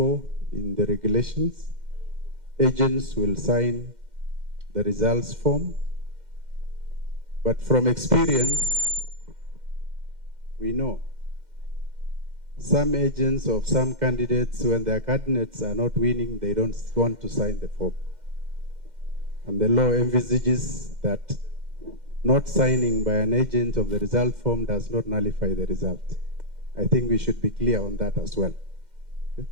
in the regulations. Agents will sign the results form, but from experience, we know some agents of some candidates, when their candidates are not winning, they don't want to sign the form. And the law envisages that not signing by an agent of the result form does not nullify the result. I think we should be clear on that as well. Okay?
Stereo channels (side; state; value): left; late; 2.1 ms